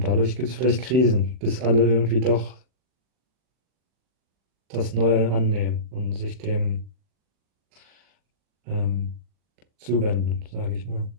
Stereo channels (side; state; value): left; late; 39 ms